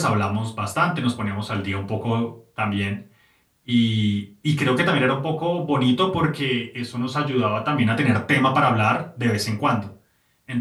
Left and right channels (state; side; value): identical; both; correlation 1.00